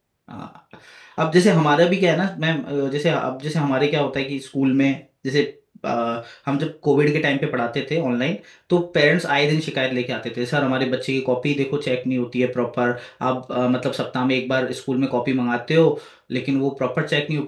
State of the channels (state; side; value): identical; both; correlation 1.00